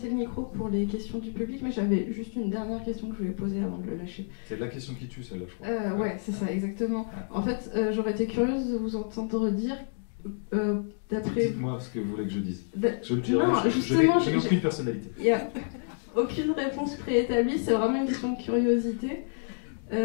le micro pour les questions du public, mais j'avais juste une dernière question que je voulais poser avant de le lâcher. C'est la question qui tue, celle-là, je crois. Ouais, c'est ça, exactement. En fait, j'aurais été curieuse de vous entendre dire, d'après... Dites-moi ce que vous voulez que je dise. Je le dirai, dirai, je n'ai aucune personnalité. Il n'y a aucune réponse préétablie, c'est vraiment une question de curiosité.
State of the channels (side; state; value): right; silent; digital silence